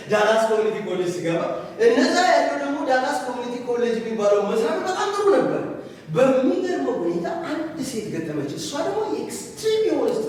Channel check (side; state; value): both; identical; correlation 1.00